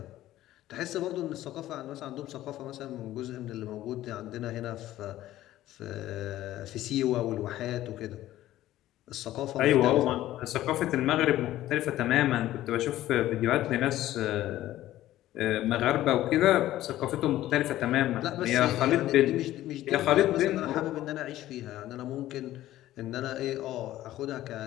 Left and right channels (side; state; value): right; quieter; 14.4 dB